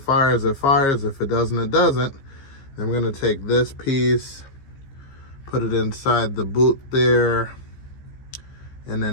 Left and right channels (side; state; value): right; late; 15 ms